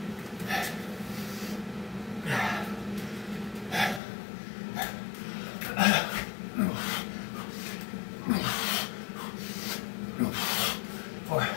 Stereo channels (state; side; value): drops out; right; at 4.0 s